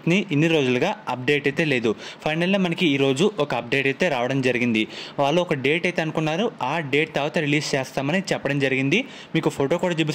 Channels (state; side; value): identical; both; correlation 1.00